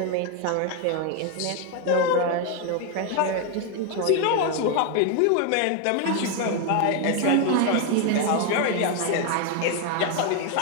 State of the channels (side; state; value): both; different; correlation 0.01